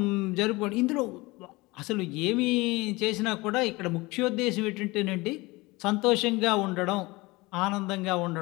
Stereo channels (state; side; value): quieter; right; 22.6 dB